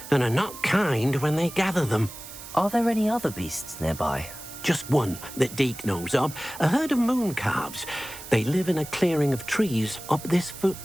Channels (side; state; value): right; noise; hiss, 14 dB below the sound